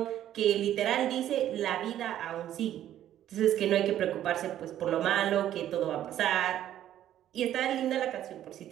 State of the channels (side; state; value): left; quieter; 11.8 dB